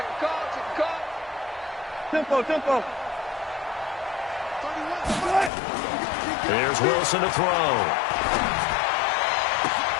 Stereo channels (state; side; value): drops out; right; at 5.5 s